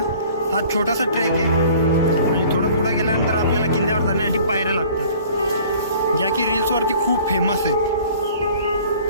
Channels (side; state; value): both; inverted; correlation -0.50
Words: हा छोटासा ट्रेक आहे आणि थोडं पुढं गेल्यानंतर आपल्याला किल्ल्यावर जाण्यासाठी पायऱ्या लागतात, ज्या की रील्सवरती खूप फेमस आहेत.